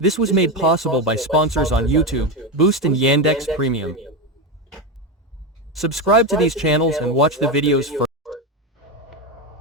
This was made possible by sponsors on YouTube, Boost and Yandex Premium. Subscribe to these channels and watch the videos first.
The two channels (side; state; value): both; normal; correlation 0.14